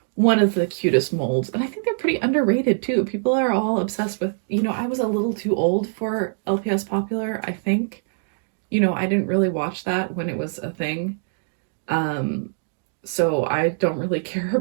One of the cutest molds, and I think they're pretty underrated too. People are all obsessed with, you know, I was a little too old for LPS Popular, I think. You know, I didn't really watch that when it was a thing. So I don't really care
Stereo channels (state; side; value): silent; left; digital silence